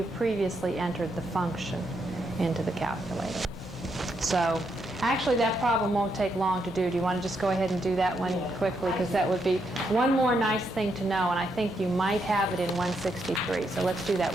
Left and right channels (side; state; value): both; normal; correlation 0.79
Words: previously entered the function into the calculator. So actually that problem won't take long to do. Do you want to just go ahead and do that one quickly? Because that would be one more nice thing to know, and I think you might have it in 163. So let's do